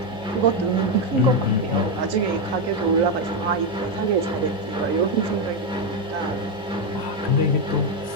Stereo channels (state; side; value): noise; left; hum, 26 dB below the sound